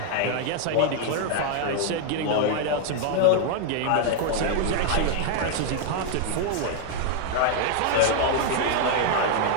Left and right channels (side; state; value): both; different; correlation 0.00